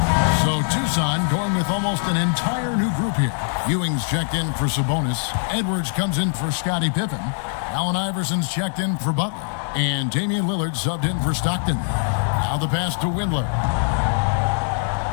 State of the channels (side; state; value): right; silent; 64 dB below the other